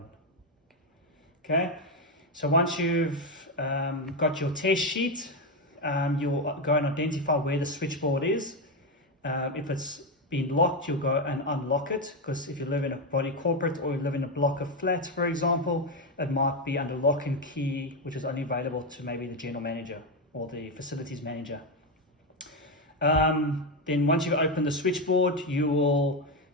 Okay, so once you've got your test sheet, you'll go and identify where the switchboard is. If it's been locked, you'll go and unlock it, because if you live in a body corporate or you live in a block of flats, for example, it might be under lock and key, which is only available to maybe the general manager or the facilities manager. Then once you open the switchboard, you will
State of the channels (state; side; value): normal; both; correlation 0.08